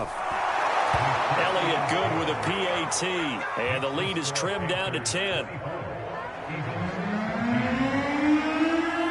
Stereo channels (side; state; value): both; identical; correlation 1.00